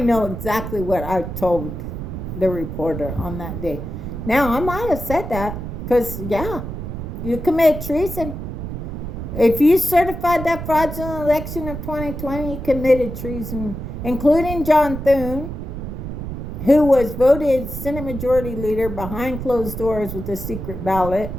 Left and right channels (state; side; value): noise; right; rumble, 7 dB below the sound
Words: exactly what I told the reporter on that day. Now, I might have said that because, yeah, you commit treason. If you certified that fraudulent election of 2020, you committed treason, including John Thune, who was voted Senate Majority Leader behind closed doors with a secret ballot